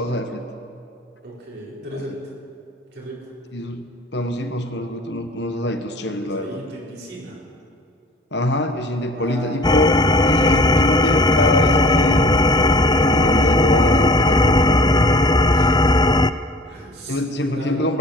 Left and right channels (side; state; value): both; normal; correlation 0.47